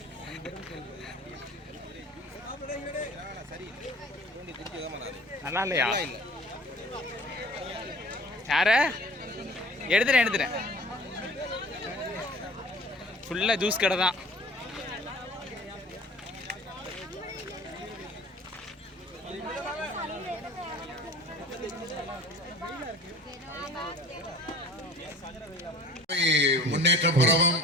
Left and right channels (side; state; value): both; normal; correlation 0.45